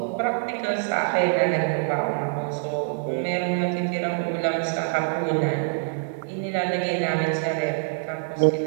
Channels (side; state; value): left; silent; digital silence